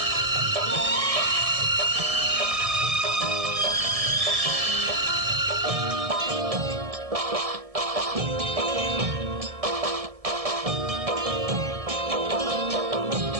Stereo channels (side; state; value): left; late; 1.7 ms